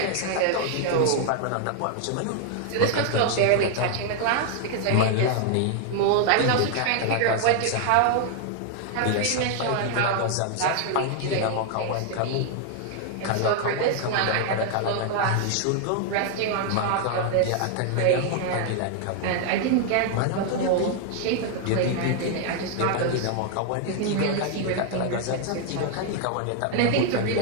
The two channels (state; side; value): different; both; correlation 0.00